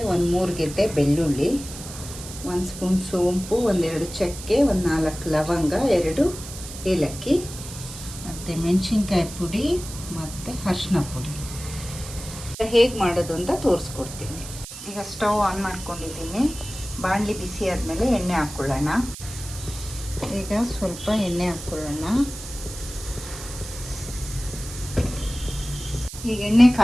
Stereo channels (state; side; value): noise; right; hiss, 12 dB below the sound